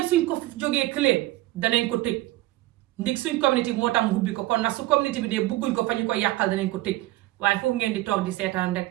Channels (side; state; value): left; quieter; 17.6 dB